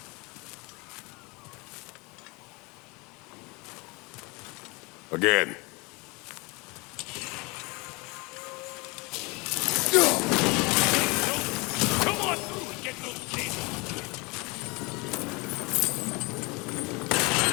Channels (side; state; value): right; quieter; 27.2 dB